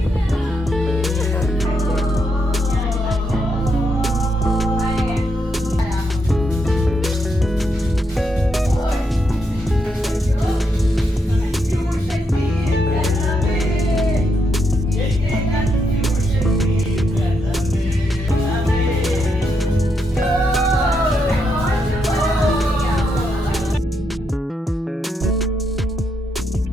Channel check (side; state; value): both; normal; correlation 0.80